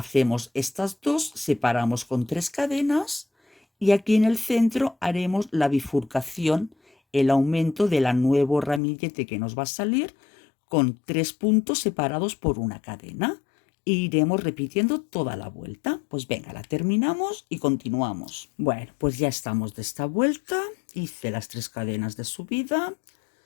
estas dos, separamos con 3 cadenas y aquí en el centro haremos la bifurcación, el aumento del nuevo ramillete que nos va a salir con 3 puntos separados por una cadena. E iremos repitiendo toda la vuelta. Pues venga, la terminamos y continuamos. Bueno, pues ya estamos de esta vuelta. Hice las 3 cadenas de subida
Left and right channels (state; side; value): drops out; right; at 8.8 s